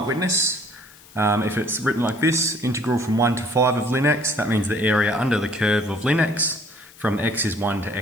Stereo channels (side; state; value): left; noise; hiss, 23 dB below the sound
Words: witness, if it's written like this, integral from 1 to 5 of ln x, that means the area under the curve of ln x from x is 1 to